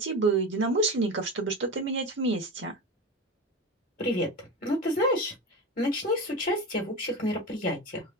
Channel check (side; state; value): both; normal; correlation 0.25